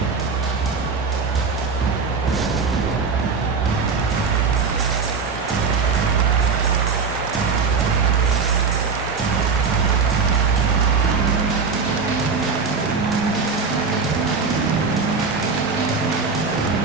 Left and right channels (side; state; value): left; quieter; 5.0 dB